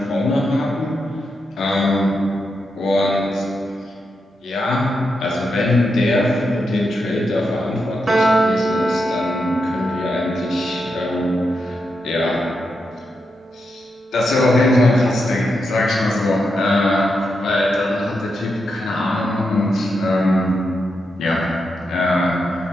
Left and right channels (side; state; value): both; normal; correlation 0.85